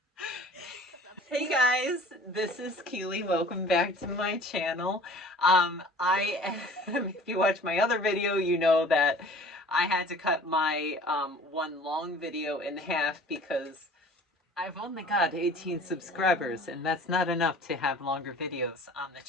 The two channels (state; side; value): normal; both; correlation 0.47